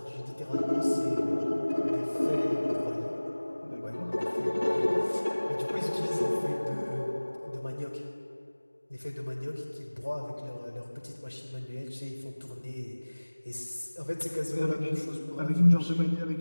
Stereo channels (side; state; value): both; inverted; correlation -1.00